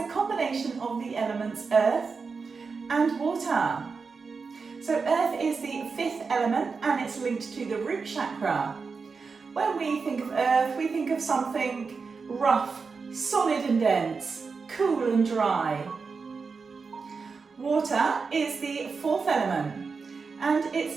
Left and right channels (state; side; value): quieter; left; 4.9 dB